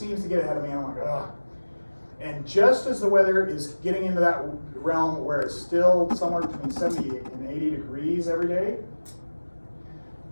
to get ahead of me, and I'm like, ugh. And just as the weather is getting into that realm where it's still somewhere between 70 and 80 degrees every day,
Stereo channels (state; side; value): inverted; both; correlation -1.00